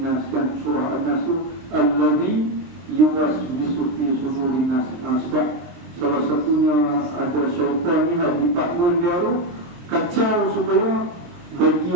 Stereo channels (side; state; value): left; late; 23 ms